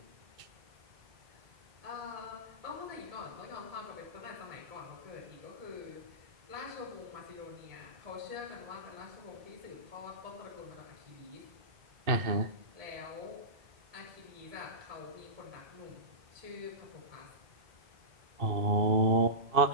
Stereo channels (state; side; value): late; left; 2.6 ms